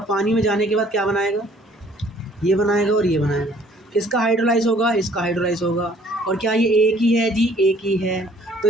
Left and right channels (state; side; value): normal; both; correlation 0.58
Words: पानी में जाने के बाद क्या बनाएगा, ये बनाएगा और ये बनाएगा। किसका हाइड्रोलाइज होगा? इसका हाइड्रोलाइज होगा। और क्या ये एक ही है जी? एक ही है। तो